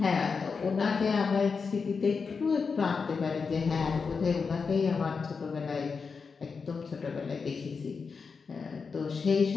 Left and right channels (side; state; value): right; quieter; 5.2 dB